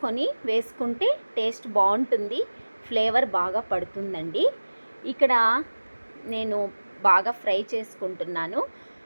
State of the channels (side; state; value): both; inverted; correlation -1.00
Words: వేసుకుంటే టేస్ట్ బాగుంటుంది, ఫ్లేవర్ బాగా పడుతుందండి. ఇక్కడ నేను బాగా ఫ్రై చేసుకుంటున్నాను.